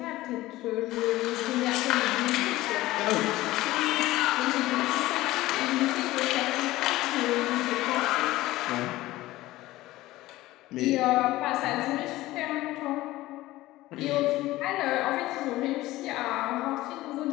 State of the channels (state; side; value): quieter; right; 17.3 dB